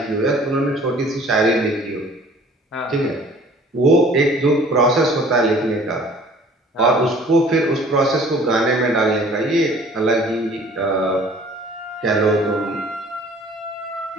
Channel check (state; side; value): normal; both; correlation 0.51